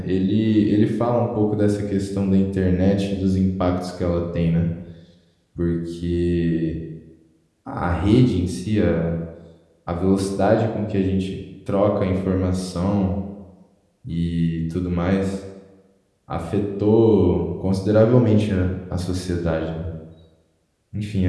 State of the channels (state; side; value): identical; both; correlation 1.00